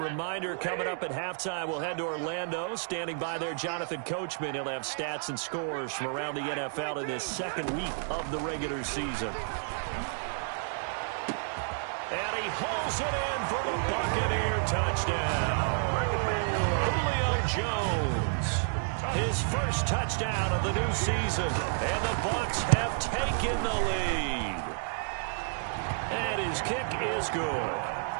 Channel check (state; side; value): silent; left; 57 dB below the other